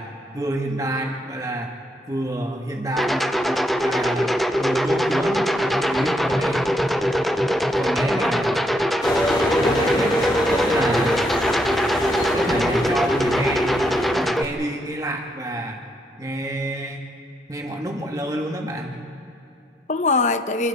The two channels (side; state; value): both; normal; correlation 0.76